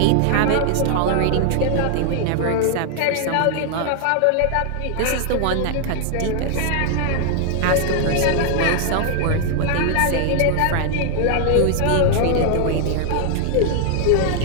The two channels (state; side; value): different; both; correlation 0.00